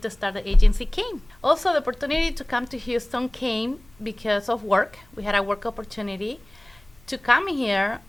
start the agency came. Also, the opportunity to come to Houston came because of work. We had a work opportunity to come here,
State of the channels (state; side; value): noise; left; hum, 28 dB below the sound